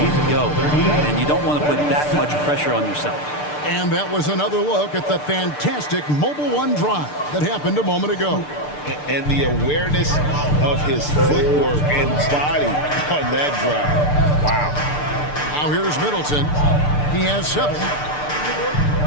to go. And you don't want to put that much pressure on yourself. And that was another look at the fantastic Mobile One drive that happened a moment ago. And the awareness of his footwork and body on that drive. Wow. Now here's Middleton. He has 7.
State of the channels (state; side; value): late; right; 6.7 ms